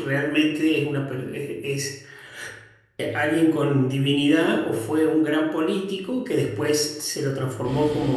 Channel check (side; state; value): both; identical; correlation 1.00